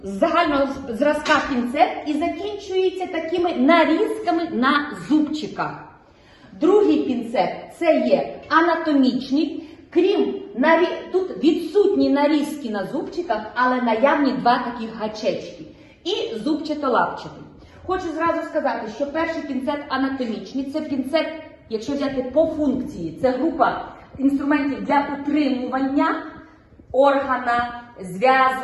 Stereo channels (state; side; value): identical; both; correlation 1.00